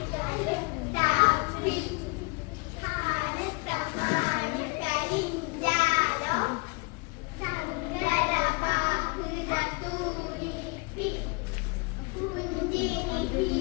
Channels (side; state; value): right; quieter; 29.2 dB